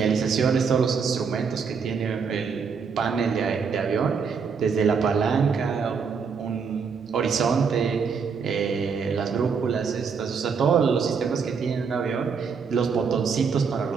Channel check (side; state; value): left; quieter; 5.8 dB